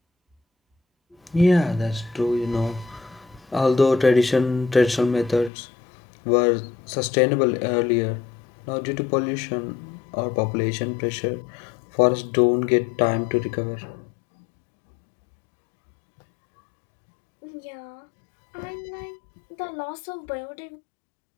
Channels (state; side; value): drops out; right; at 5.5 s